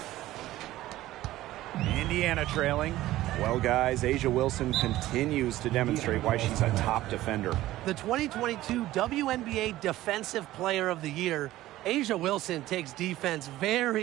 Indiana trailing. Well, guys, Asia Wilson continues to demonstrate why she's a top defender. The 2022 WNBA Defensive Player of the Year, Asia Wilson takes defense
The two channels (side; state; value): left; quieter; 15.7 dB